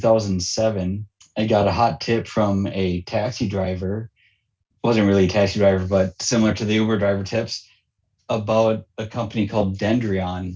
I got a hot tip from a taxi driver. Wasn't really a taxi driver, but similar to the Uber driver tips, about a company called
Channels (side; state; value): both; identical; correlation 1.00